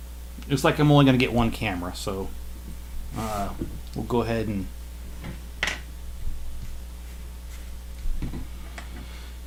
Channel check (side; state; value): both; identical; correlation 1.00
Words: Looks like I'm only going to get 1 camera, so we'll go ahead and...